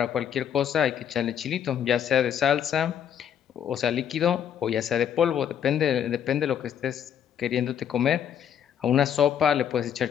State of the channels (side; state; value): right; quieter; 9.0 dB